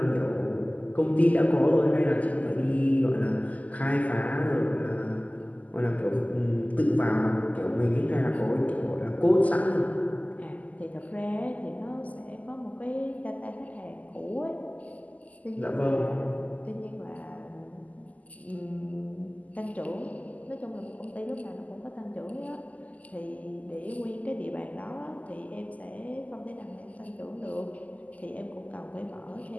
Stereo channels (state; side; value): late; right; 0.075 ms